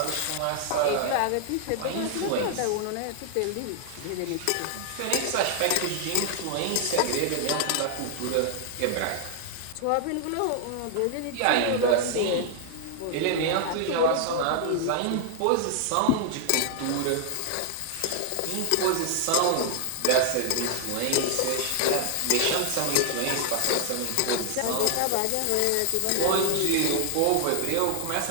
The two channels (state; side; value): different; both; correlation 0.00